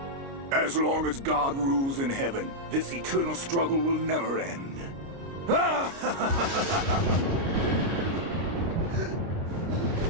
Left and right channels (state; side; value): late; left; 29 ms